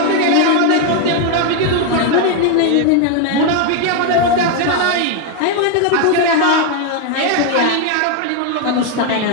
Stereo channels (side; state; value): both; different; correlation 0.01